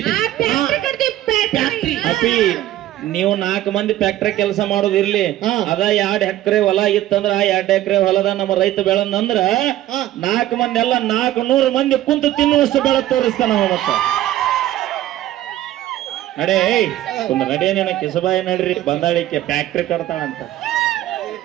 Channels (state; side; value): quieter; left; 14.0 dB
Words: ಅಪ್ಪಿ ನೀವು 4 ಮಂದಿ ಫ್ಯಾಕ್ಟ್ರಿ ಕೆಲಸ ಮಾಡೋದು ಇರ್ಲಿ. ಅದ 2 ಎಕರೆ ಹೊಲ ಇತ್ತಂದ್ರ ಆ 2 ಎಕರೆ ಹೊಲದ ನಮ್ಮ ರೈತ ಬೆಳಂದ್ರ 4 ಮಂದಿ ಎಲ್ಲ 400 ಮಂದಿ ಕುಂತು ತಿನ್ನುವಷ್ಟು ಬೆಳೆ ತೋರಿಸ್ತಾನ ಮತ್ತ. ನಡೇ ಒಂದು ನಡೇನೇನ ಕಿಸಬಾಯಿ ನಡ್ರಿ ಬಂದಾಳಿಕೆ ಫ್ಯಾಕ್ಟ್ರಿ ಕಟ್ತಾಳಂತ.